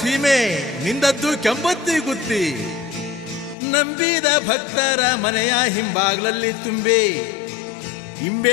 ನಿಂದದ್ದು ಕೆಂಪತ್ತಿ ಗುತ್ತಿ. ನಂಬಿದ ಭಕ್ತರ ಮನೆಯ ಹಿಂಬಾಗ್ಲಲ್ಲಿ ತುಂಬಿ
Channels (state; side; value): drops out; right; at 3.6 s